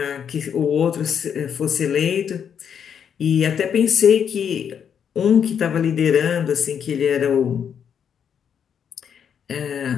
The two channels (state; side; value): quieter; right; 7.9 dB